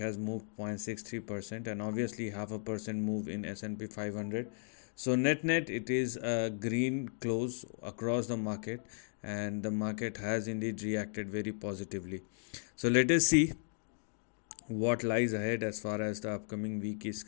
moved 0.63%, and obviously half a percent move in S&P 500. So net it is a green close across the market, and the market has indeed reacted very positively. So let us see what lies ahead as far as the upcoming week is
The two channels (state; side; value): silent; right; digital silence